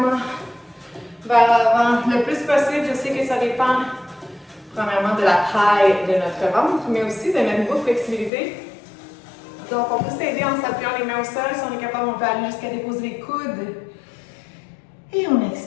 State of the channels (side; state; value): right; drops out; at 8.3 s